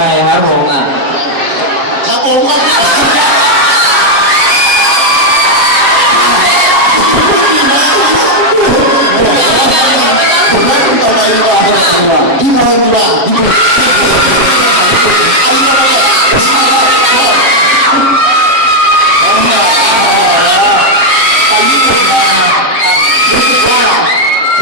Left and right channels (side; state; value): left; late; 7.4 ms